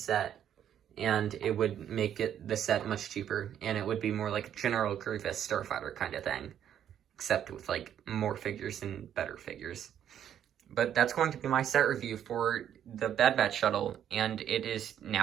and it would make the set much cheaper, and it would be more like General Grievous Starfighter kind of thing, except with like more figures and better figures. But that's going to be my set review for the Bad Batch Shuttle, and it is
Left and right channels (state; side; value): quieter; left; 9.9 dB